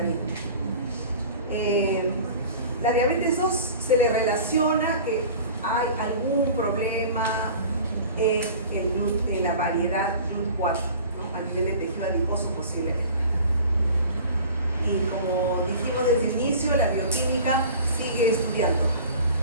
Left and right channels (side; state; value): both; inverted; correlation -0.42